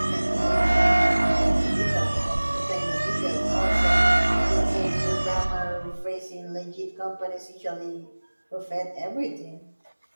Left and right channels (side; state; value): both; inverted; correlation -1.00